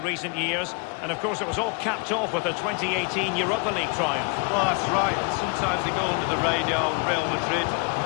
recent years. And, of course, it was all capped off with a 2018 Europa League triumph. Well, that's right. And sometimes they go under the radar. Real Madrid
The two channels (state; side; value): quieter; right; 33.1 dB